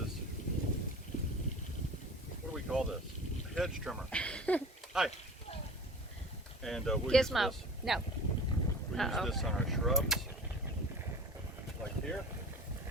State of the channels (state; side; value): normal; both; correlation 0.39